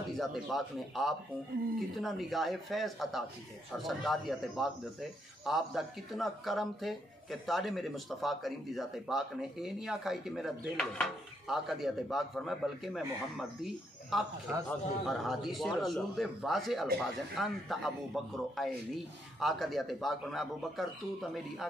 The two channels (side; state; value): both; normal; correlation 0.76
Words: دی ذات پاک نے آپ کو کتنا نگاہ فیض عطا کی ہے اور سرکار دی ذات پاک دیتے آپ دا کتنا کرم تھے کہ تاڑے میرے مصطفیٰ کریم دی ذات پاک نے اے نہیں آکھائی کہ میرا دل ہے آقا دی ذات پاک فرمائے بلکہ میں محمد دی آنکھ اور حدیث رسول دے واضح الفاظ ہیں انت ابو بکر عینی آقا دی ذات پاک فرمائے ابو بکر تو تا میری